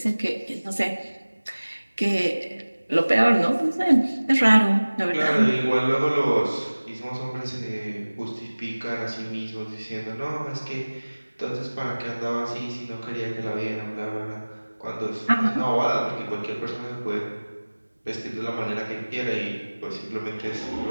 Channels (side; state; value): both; inverted; correlation -1.00